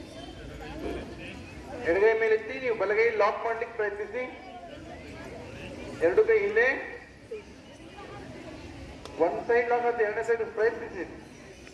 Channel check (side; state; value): both; identical; correlation 1.00